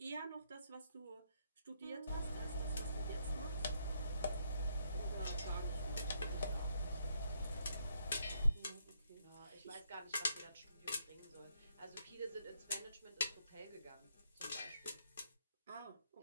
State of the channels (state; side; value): inverted; both; correlation -0.73